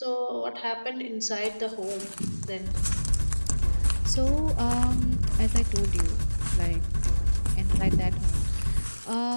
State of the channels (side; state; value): both; inverted; correlation -1.00